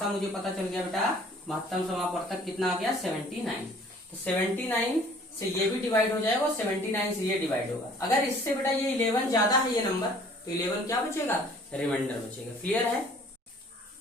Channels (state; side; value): normal; both; correlation 0.54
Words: मुझे पता चल गया बेटा, महत्तम समापवर्तक कितना आ गया, 79। तो 79 से ये भी डिवाइड हो जाएगा और 79 से ये डिवाइड होगा। अगर इससे बेटा ये 11 ज्यादा है ये नंबर, तो 11 क्या बचेगा, रिमाइंडर बचेगा। क्लियर है।